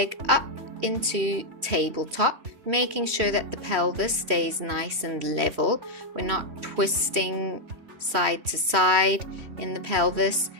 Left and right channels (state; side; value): late; left; 3.2 ms